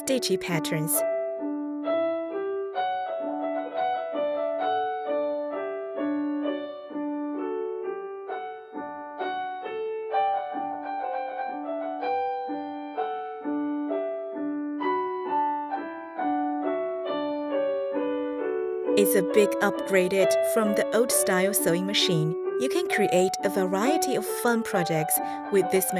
patterns. It's a big upgraded from the old-style sewing machine. You can create a variety of fun projects with this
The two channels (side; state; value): both; identical; correlation 1.00